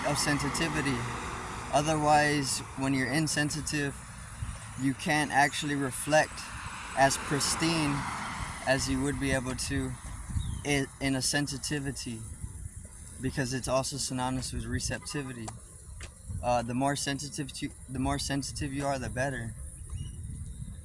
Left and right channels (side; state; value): both; identical; correlation 1.00